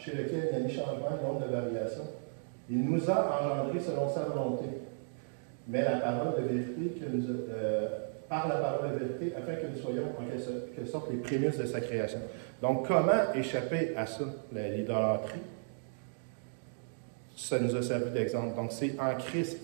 lequel il n'y a ni changement, ni honte de variation. Il nous a engendrés selon sa volonté, mais la parole de vérité par la parole de vérité, afin que nous soyons en quelque sorte les prémices de sa création. Donc, comment échapper à ça, l'idolâtrie? Ça nous a servi d'exemple. Donc, c'est en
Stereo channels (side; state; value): left; silent; digital silence